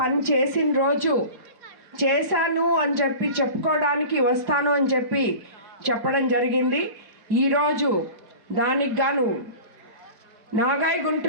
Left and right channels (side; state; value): left; late; 5.0 ms